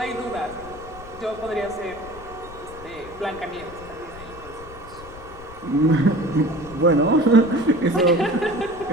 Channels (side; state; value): left; noise; rumble, 17 dB below the sound